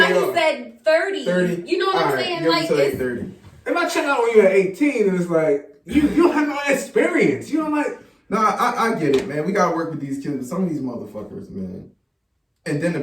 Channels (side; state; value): both; identical; correlation 1.00